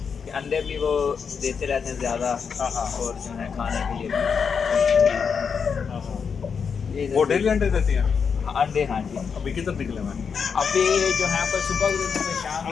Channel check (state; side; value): quieter; right; 6.2 dB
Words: अंडे भी वो देते रहते हैं ज़्यादा। हाँ। और जो है खाने के लिए भी। ये वो डेली अंडे देती हैं? अंडे, हाँ जी। अभी किधर निकले मैं? अभी जो है आपको सुबह को शाम